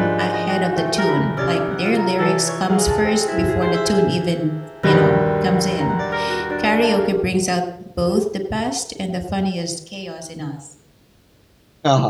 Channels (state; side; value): identical; both; correlation 1.00